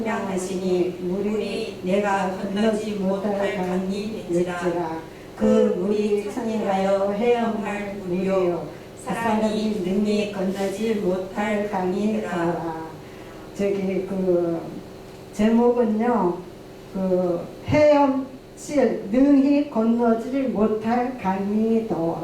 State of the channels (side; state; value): both; identical; correlation 1.00